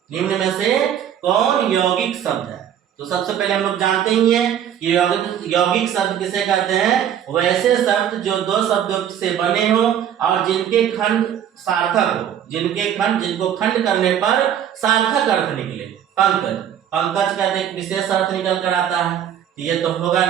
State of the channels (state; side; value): quieter; left; 9.7 dB